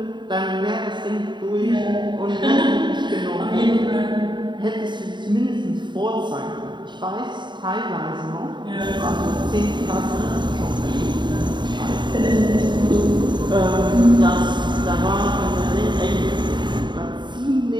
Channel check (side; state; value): left; late; 0.22 ms